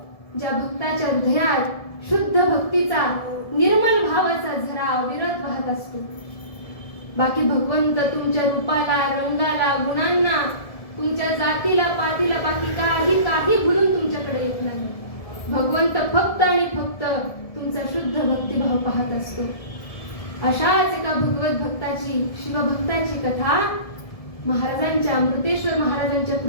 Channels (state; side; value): late; right; 1.7 ms